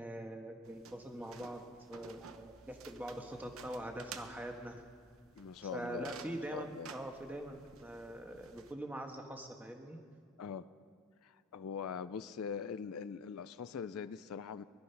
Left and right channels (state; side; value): normal; both; correlation 0.47